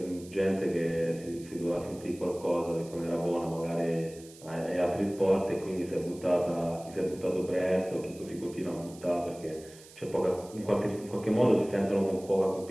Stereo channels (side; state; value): right; noise; hiss, 21 dB below the sound